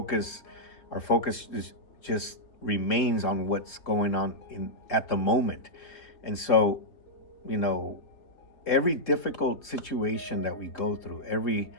is just remains on what's going on in at the moment. And so, you know every difficult situation that we go through, every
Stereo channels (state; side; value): late; right; 3.7 ms